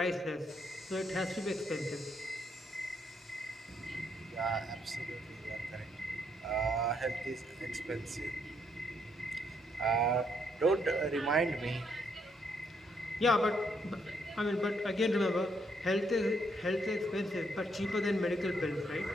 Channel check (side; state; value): both; normal; correlation 0.74